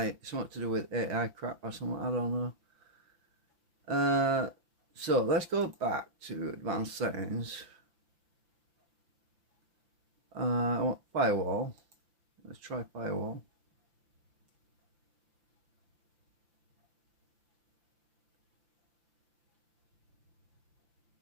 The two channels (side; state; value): left; late; 5.9 ms